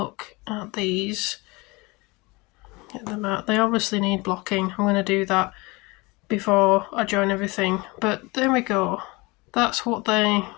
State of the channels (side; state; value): right; quieter; 24.9 dB